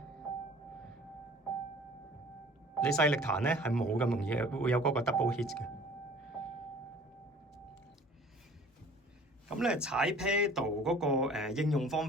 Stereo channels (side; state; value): both; normal; correlation 0.49